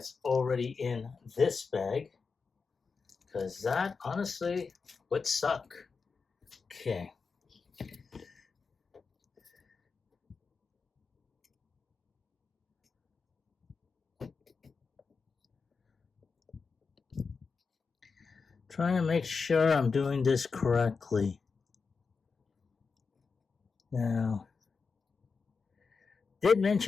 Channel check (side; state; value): right; quieter; 4.9 dB